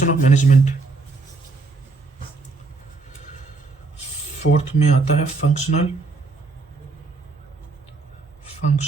of management. Fourth में आता है functional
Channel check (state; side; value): quieter; left; 3.9 dB